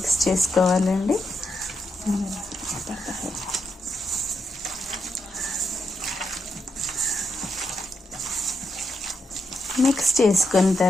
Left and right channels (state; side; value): normal; both; correlation 0.82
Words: చేసుకోవాలండి. మిక్స్ చేసుకున్న